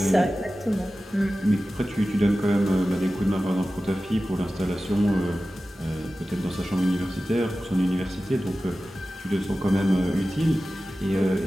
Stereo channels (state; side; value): normal; both; correlation 0.95